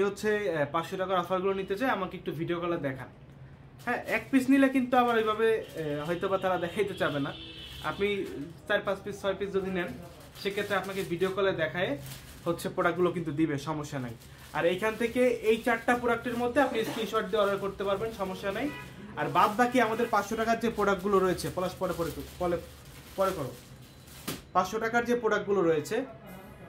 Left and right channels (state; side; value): identical; both; correlation 1.00